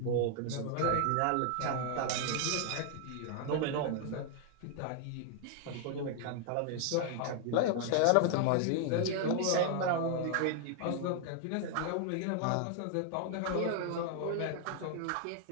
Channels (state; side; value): different; both; correlation 0.00